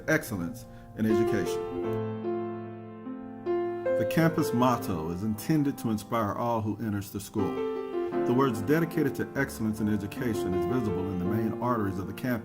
excellence in education. The campus motto is intended to inspire all who enters the school. The words dedicated to excellence in education is visible in the main arteries of the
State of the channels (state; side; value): identical; both; correlation 1.00